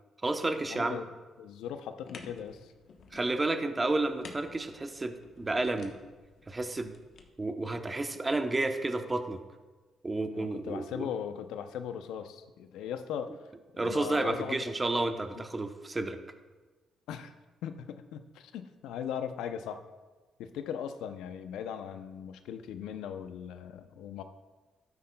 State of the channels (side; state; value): both; normal; correlation 0.85